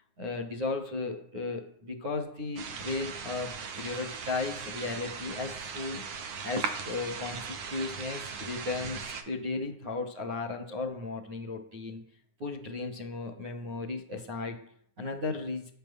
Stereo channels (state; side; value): late; left; 9.6 ms